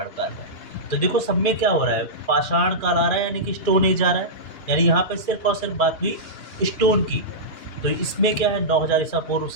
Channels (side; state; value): right; late; 2.9 ms